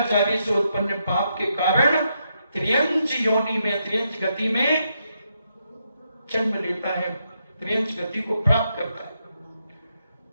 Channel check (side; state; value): both; inverted; correlation -0.80